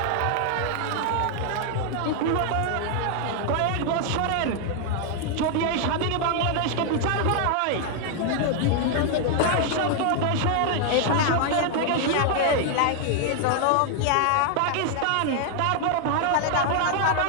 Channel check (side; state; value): both; different; correlation 0.00